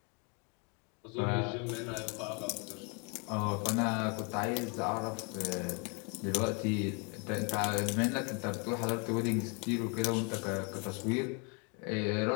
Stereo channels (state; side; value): quieter; right; 34.6 dB